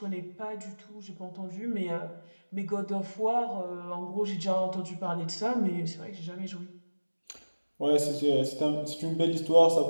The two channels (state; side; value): inverted; both; correlation -1.00